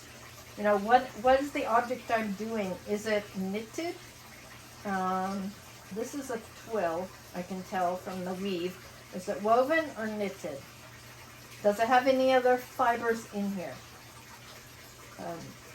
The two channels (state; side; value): identical; both; correlation 1.00